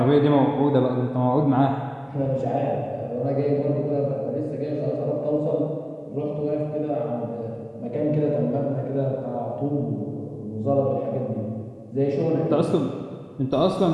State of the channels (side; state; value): both; identical; correlation 1.00